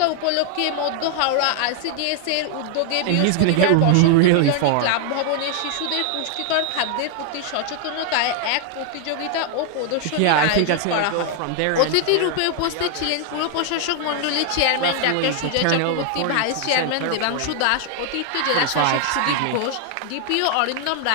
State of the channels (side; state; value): both; different; correlation 0.00